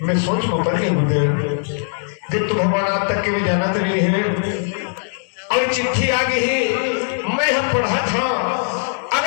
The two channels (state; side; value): silent; right; digital silence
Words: मैं सोच में पड़ गई गुरुदेव जब तो भगवान आज तक के में जाना तो नहीं है और चिट्ठी आ गई मैं हम पढ़ा था